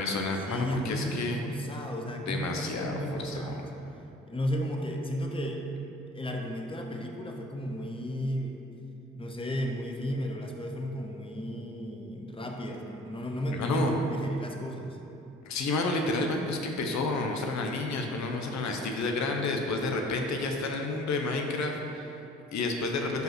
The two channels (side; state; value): both; normal; correlation 0.50